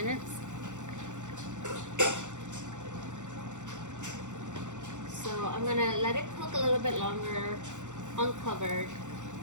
So I'm gonna let it cook a little bit longer, uncovered,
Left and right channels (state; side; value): late; left; 0.85 ms